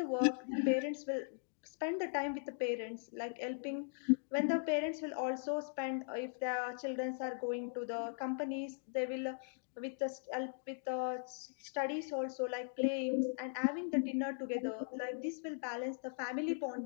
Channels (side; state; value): right; silent; digital silence